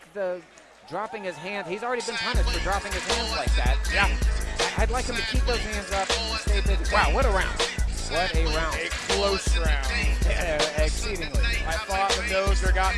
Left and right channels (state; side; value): identical; both; correlation 1.00